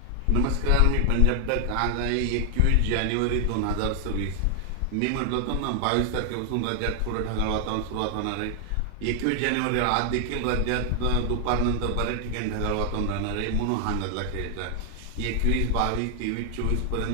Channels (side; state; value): both; different; correlation 0.00